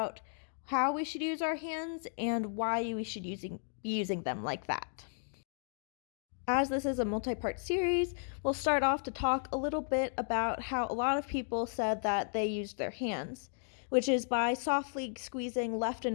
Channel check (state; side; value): silent; right; digital silence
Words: how we should use our hands and why we should be using them like that. As this is a multi-part series, we'll start off to talk a little bit about how a lot of people said that they used their hands, which is by softly squeezing left